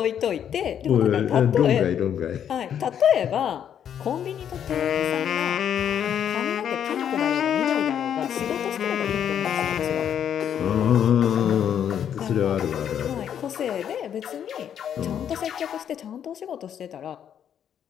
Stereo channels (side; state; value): right; quieter; 9.1 dB